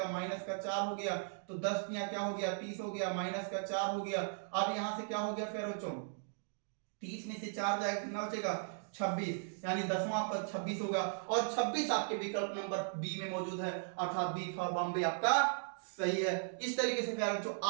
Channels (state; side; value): silent; left; digital silence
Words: माइनस का 4 हो गया। तो 10 यहाँ क्या हो गया, 30 हो गया, माइनस का 4 हो गया। अब यहां से क्या हो गया प्यारे बच्चों, 30 में से 4 जाएगा, कितना बचेगा, 26, यानी 10वां पद 26 होगा। और 26 आपके विकल्प नंबर बी में मौजूद है, अर्थात बी फॉर बॉम्बे आपका सही है। इस तरीके से प्यारे बच्चों